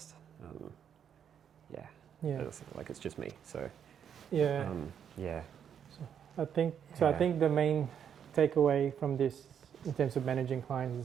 It's like it's just me. So Yeah. I think so. I think the main takeaway from this, in terms of managing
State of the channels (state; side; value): quieter; left; 8.4 dB